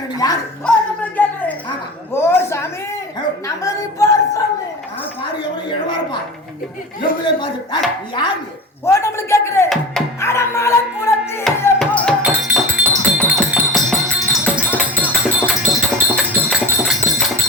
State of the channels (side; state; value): both; normal; correlation 0.33